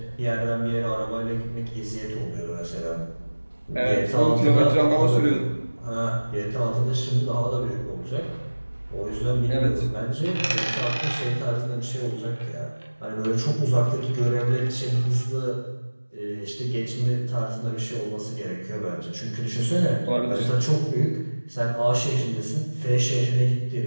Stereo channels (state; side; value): inverted; both; correlation -1.00